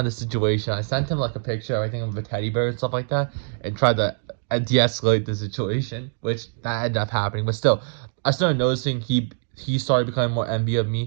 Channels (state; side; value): silent; left; 63 dB below the other